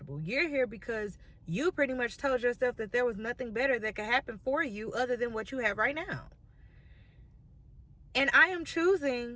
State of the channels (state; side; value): identical; both; correlation 1.00